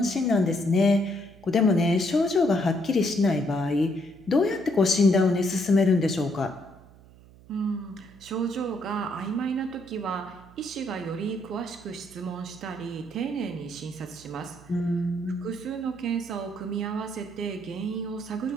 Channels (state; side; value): noise; right; hum, 23 dB below the sound